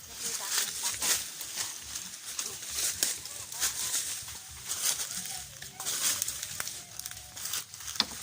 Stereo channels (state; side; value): identical; both; correlation 1.00